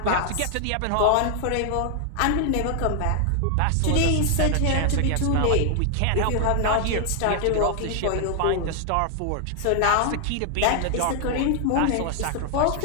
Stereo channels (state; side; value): different; both; correlation 0.00